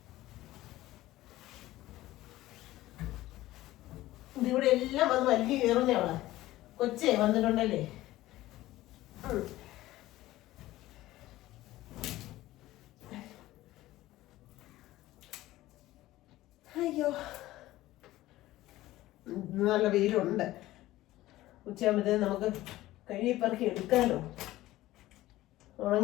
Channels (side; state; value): right; quieter; 16.3 dB